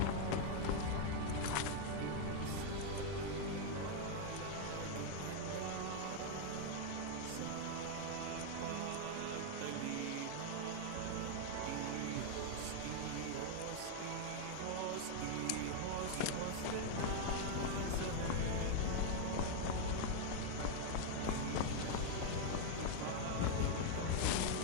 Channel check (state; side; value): different; both; correlation 0.00